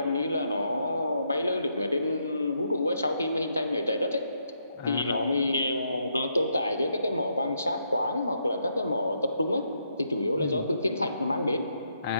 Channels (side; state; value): both; inverted; correlation -0.77